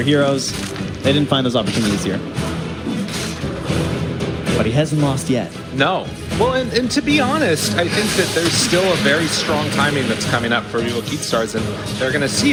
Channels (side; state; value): both; identical; correlation 1.00